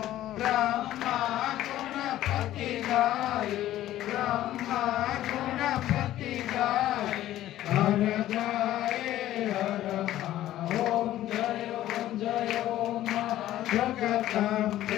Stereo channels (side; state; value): right; quieter; 13.7 dB